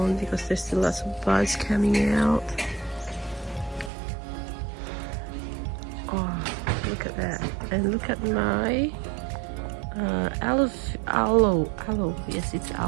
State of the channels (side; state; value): left; drops out; at 3.9 s